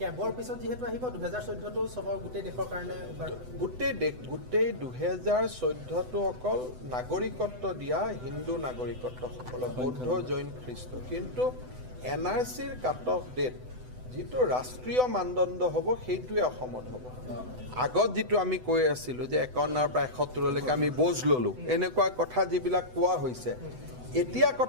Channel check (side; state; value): left; late; 8.0 ms